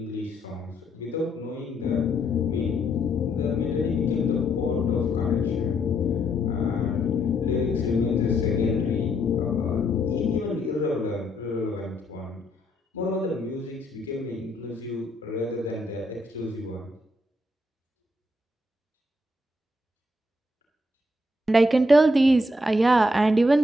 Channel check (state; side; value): normal; both; correlation 0.74